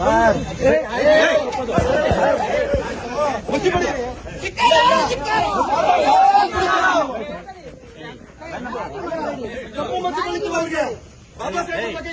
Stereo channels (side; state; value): both; identical; correlation 1.00